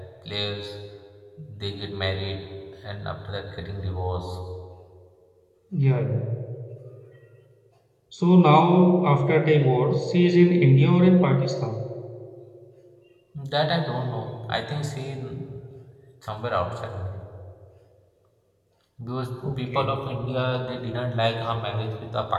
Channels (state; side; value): identical; both; correlation 1.00